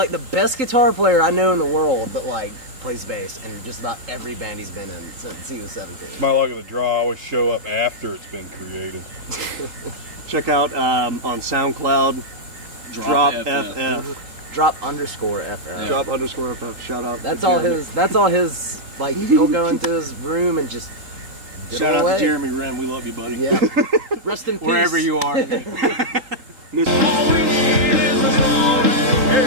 the best guitar player I know in the world, but like plays bass in just about every band he's been in since he was 17. My luck of the draw, I always show up after it's been created. check out on SoundCloud. Drop FF. Drop _FF. Yeah. Drop _FF. Shout out. That's to all Jeremy. his. That's all his. Like he'll go into his room and just get Shout out away. to Jeremy Wren. We love you, buddy. Yeah. Rest in peace. Wherever you are.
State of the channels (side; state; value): left; late; 3.8 ms